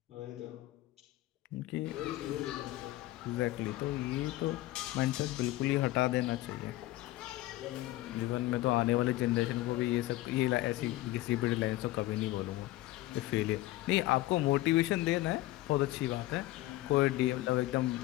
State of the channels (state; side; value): quieter; right; 17.1 dB